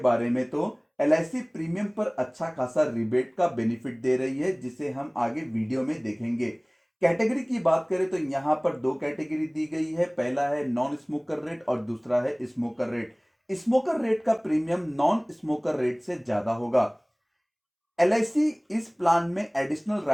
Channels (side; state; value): both; identical; correlation 1.00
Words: में तो LIC प्रीमियम पर अच्छा खासा रिबेट का बेनिफिट दे रही है, जिसे हम आगे वीडियो में देखेंगे। कैटेगरी की बात करें तो यहां पर दो कैटेगरी दी गई है। पहला है नॉन स्मोकर रेट और दूसरा है स्मोकर रेट। स्मोकर रेट का प्रीमियम नॉन स्मोकर रेट से ज्यादा होगा। LIC इस प्लान में एडिशनल